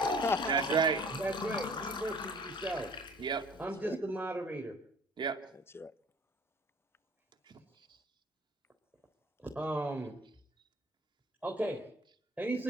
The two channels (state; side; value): normal; both; correlation 0.50